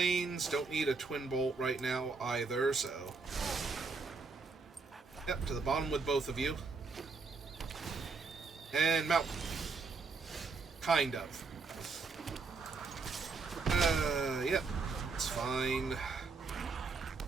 don't need a Twin Bolt right now either, so yep, to the bottom with both of you. And mount. Kind of. Yep, it's fine.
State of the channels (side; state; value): left; quieter; 4.4 dB